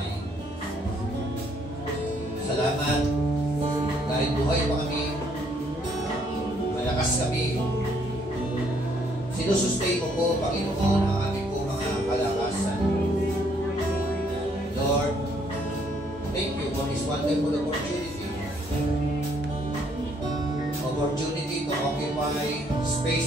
Salamat dahil buhay pa kami, malakas kami. Sinusustain mo po, Panginoon, ang aming po mga kalakasan. Lord, thank you for this wonderful opportunity. Opportunity to occupy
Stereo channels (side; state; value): both; normal; correlation 0.68